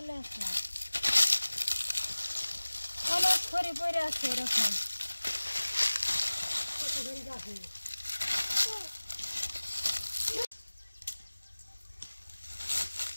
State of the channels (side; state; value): both; inverted; correlation -1.00